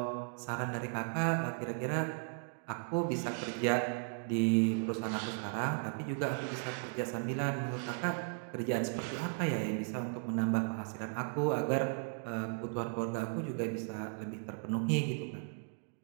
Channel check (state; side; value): silent; left; 54 dB below the other